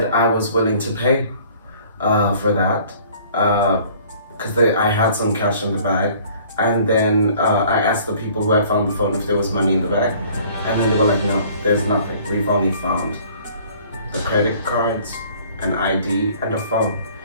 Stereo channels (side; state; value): both; inverted; correlation -0.53